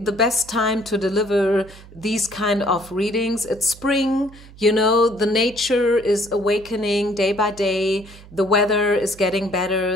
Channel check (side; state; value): right; noise; hum, 20 dB below the sound